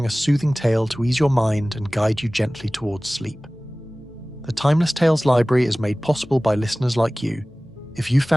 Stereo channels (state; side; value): normal; both; correlation 0.98